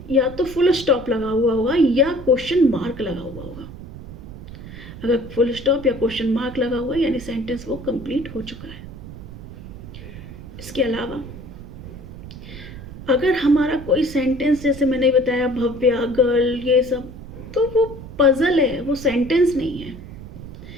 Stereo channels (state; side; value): noise; right; rumble, 13 dB below the sound